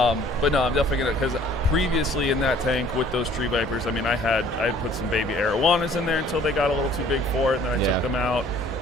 no, I'm definitely going to, because previously in that tank with those tree vipers, I mean, I had put some baby arowanas in there until they got a little too big for it, and then I took them out.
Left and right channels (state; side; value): normal; both; correlation 0.55